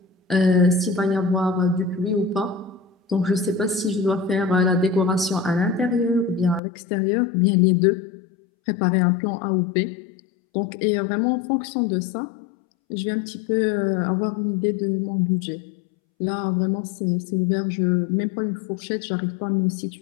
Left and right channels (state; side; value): drops out; right; at 6.6 s